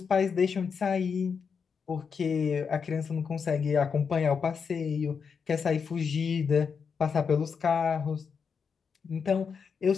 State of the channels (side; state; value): right; quieter; 6.0 dB